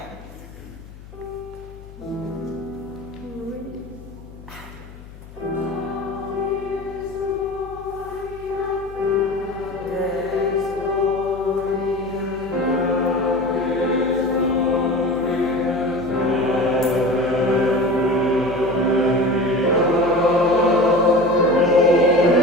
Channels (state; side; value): noise; left; hum, 18 dB below the sound